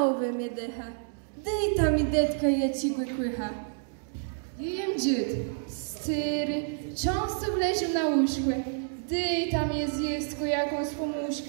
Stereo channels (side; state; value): left; silent; 59 dB below the other